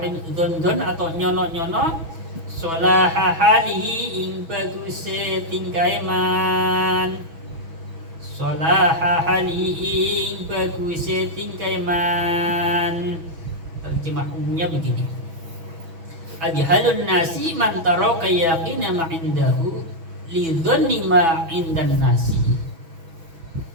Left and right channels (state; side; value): late; left; 6.1 ms